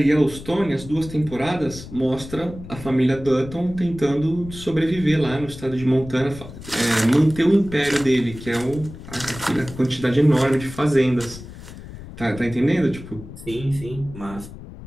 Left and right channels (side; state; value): left; noise; rumble, 14 dB below the sound